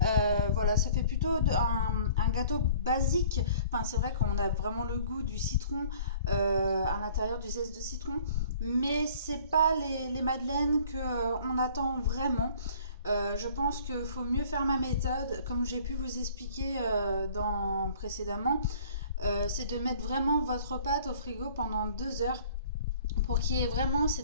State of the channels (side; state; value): both; inverted; correlation -0.52